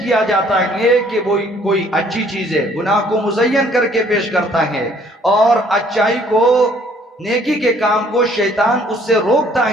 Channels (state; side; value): normal; both; correlation 0.61